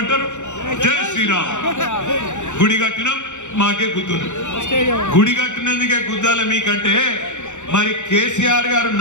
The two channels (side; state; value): right; late; 0.84 ms